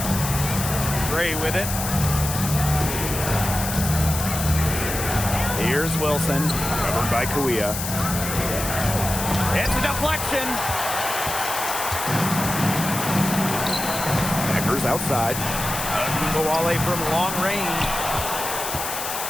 Gray with it. Here's Wilson. Covered by Kuia. It's a deflection. Beckers outside. Agumbawale from long range.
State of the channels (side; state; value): left; noise; hiss, 5 dB below the sound